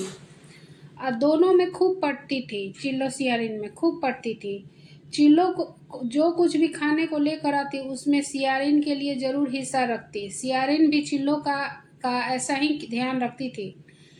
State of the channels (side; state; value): both; identical; correlation 1.00